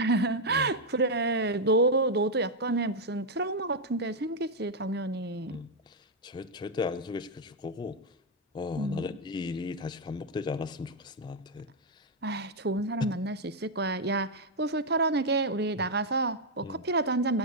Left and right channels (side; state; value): both; normal; correlation 0.01